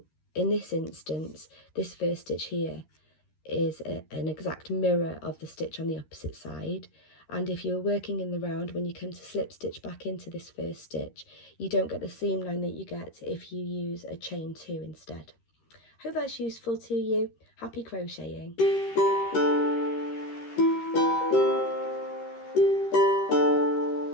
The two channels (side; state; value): right; late; 13 ms